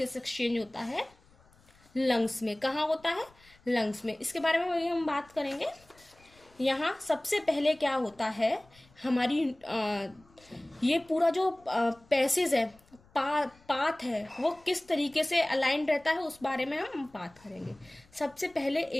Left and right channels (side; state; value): left; noise; rumble, 29 dB below the sound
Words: एक्सचेंज होता है लंग्स में। कहाँ होता है, लंग्स में। इसके बारे में हम बात करेंगे। यहाँ सबसे पहले क्या होता है, हमारी ये पूरा जो पैसेज है, पाथ है, वो किस तरीके से अलाइंड रहता है उस बारे में हम बात करेंगे। सबसे पहले